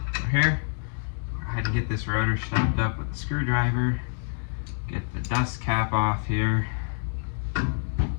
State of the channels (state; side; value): silent; right; digital silence